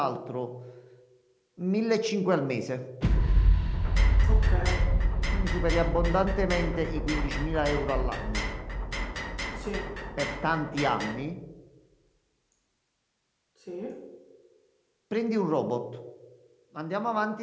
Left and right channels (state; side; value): identical; both; correlation 1.00